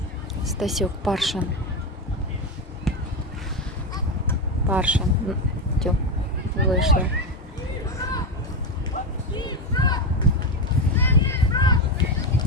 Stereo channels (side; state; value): both; normal; correlation 0.14